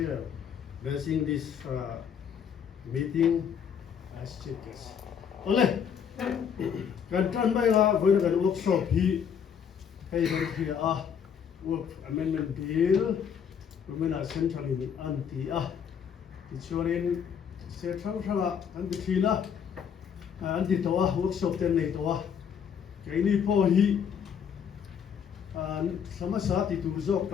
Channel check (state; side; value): quieter; right; 7.6 dB